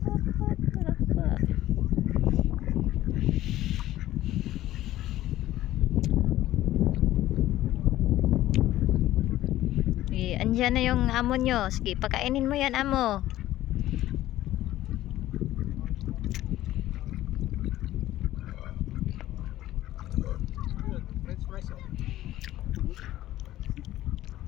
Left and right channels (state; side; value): quieter; right; 14.5 dB